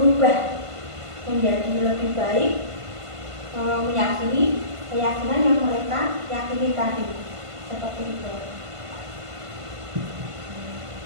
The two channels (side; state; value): left; late; 1.5 ms